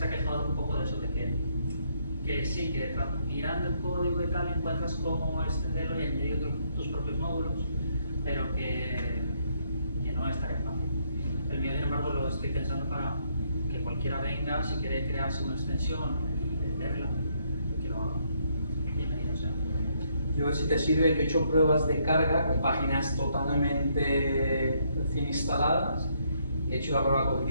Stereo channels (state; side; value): inverted; both; correlation -0.72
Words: ha quejado un poco de eso, de que sí, que mirando el código y tal encuentras cómo extenderlo y añadir tus propios módulos, pero que no es tan fácil. El mío, sin embargo, lo estoy pensando para que cualquiera venga, si quiere crearse una extensión, venderla, que lo haga. Bienvenido sea. Yo, si te sirve, yo he hecho pruebas de carga con páginas totalmente recién instaladas. He hecho la prueba con